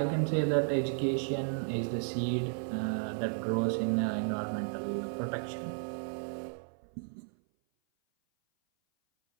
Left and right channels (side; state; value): left; silent; 56 dB below the other